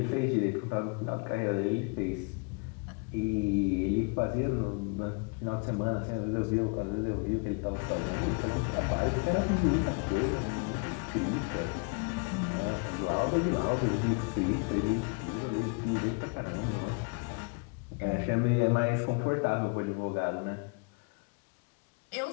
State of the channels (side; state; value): right; quieter; 34.0 dB